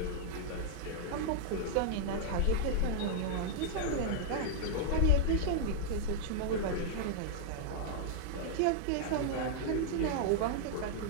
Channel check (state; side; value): different; both; correlation -0.01